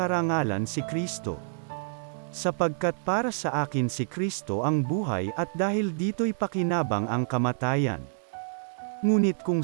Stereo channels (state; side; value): silent; left; digital silence